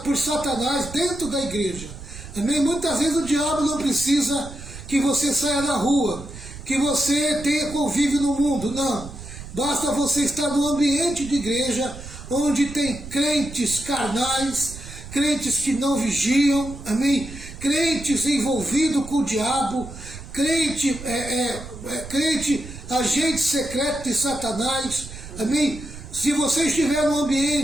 por Satanás dentro da igreja. Amém? Muitas vezes o diabo não precisa que você saia na rua, que você tenha convívio no mundo, não. Basta você estar no ambiente de igreja, onde tem crentes carnais, crentes que não vigiam, amém? Crentes envolvidos com o diabo, crente agente secreto de Satanás, Amém? Se você estiver no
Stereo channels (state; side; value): noise; right; rumble, 13 dB below the sound